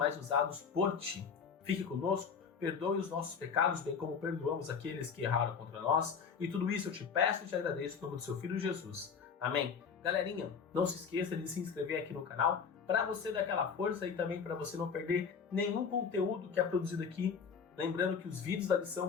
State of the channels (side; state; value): right; quieter; 6.2 dB